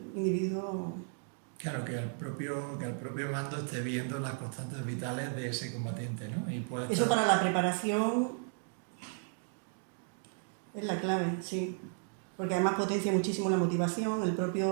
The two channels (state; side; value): silent; left; 55 dB below the other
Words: individuo... Claro, que el propio mando esté viendo las constantes vitales de ese combatiente, ¿no? Y puede Eso estar... para la preparación es la clave, sí. Porque además potencia muchísimo la motivación, el